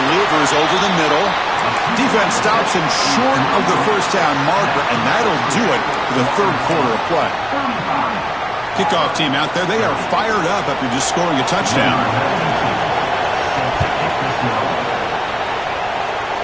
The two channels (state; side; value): noise; left; rumble, 25 dB below the sound